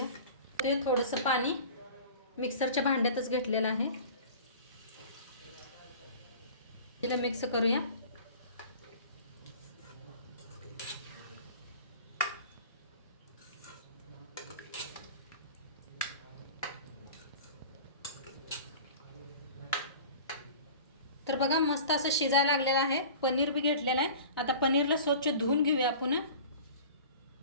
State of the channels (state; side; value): inverted; both; correlation -0.41